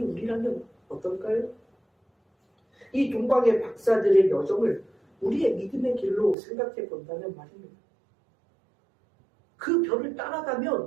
우리라면 어떨까요? 이 동방의 박사들의 여정을 우리의 믿음의 길로 생각해 본다면 말입니다. 그 별을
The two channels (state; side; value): drops out; left; at 6.4 s